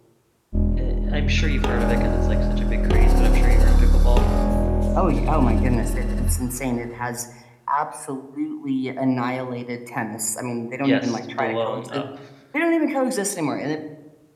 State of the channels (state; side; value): identical; both; correlation 1.00